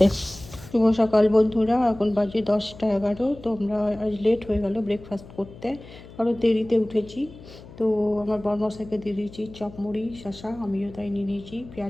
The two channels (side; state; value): left; noise; hum, 18 dB below the sound